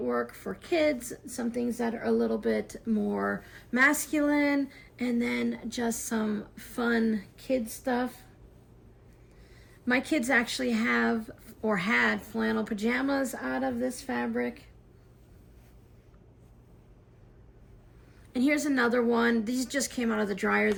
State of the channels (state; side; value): identical; both; correlation 1.00